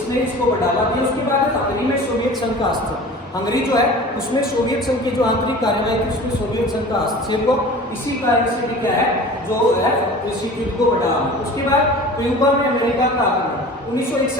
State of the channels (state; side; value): normal; both; correlation 0.40